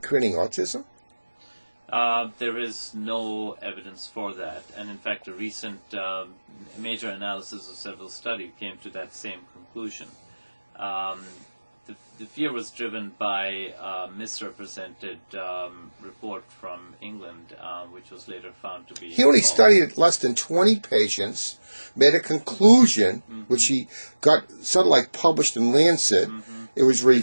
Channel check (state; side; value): inverted; both; correlation -1.00